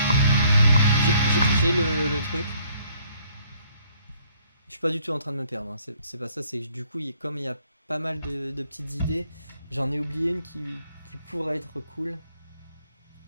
le truc. Je suis pas du tout en train de me perdre. Hein. C'est pas ça, c'est que du coup, comme il y a pas mal de petites idées, j'en ai oublié une qui pourrait être cool.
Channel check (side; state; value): both; inverted; correlation -0.63